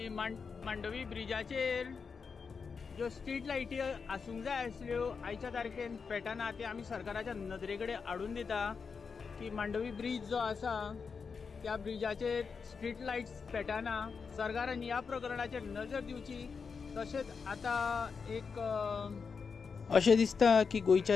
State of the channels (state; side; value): quieter; right; 5.5 dB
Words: मांडवी ब्रिजाचेर ज्यो स्ट्रीट लायटी आसूंक जाय आसल्यो आयच्या तारखेन पेटना, ते आमी सरकाराच्या नदरे कडेन हाडून दिता की मांडवी ब्रिज जो आसा त्या ब्रिजाचेर स्ट्रीट लायट्स पेटना। सरकारान ह्या प्रकरणाचेर नजर दिवची। तशेंच आतां एक अशें दिसता की